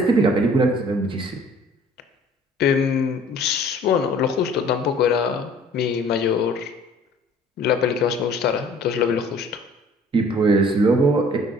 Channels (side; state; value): both; normal; correlation 0.53